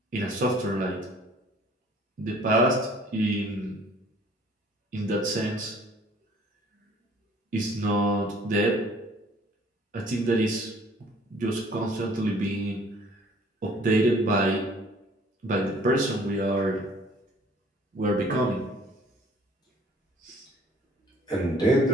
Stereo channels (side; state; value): both; normal; correlation 0.55